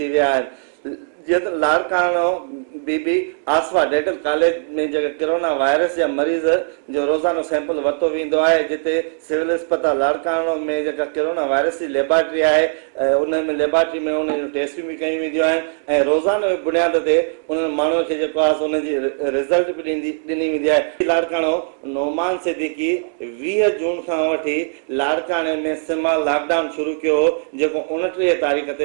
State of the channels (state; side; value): silent; left; digital silence